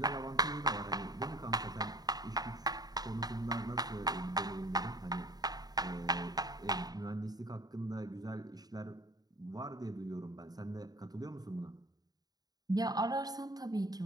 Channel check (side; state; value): left; late; 0.19 ms